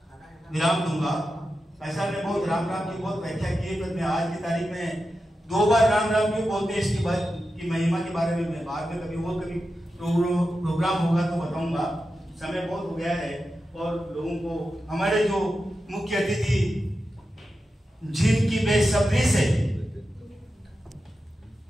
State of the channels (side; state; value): both; normal; correlation 0.91